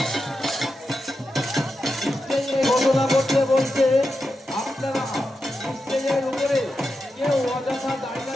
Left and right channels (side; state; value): both; normal; correlation 0.89